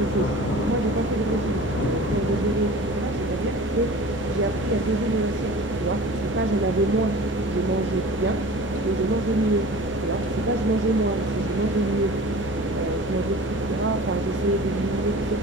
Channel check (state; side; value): normal; both; correlation 0.40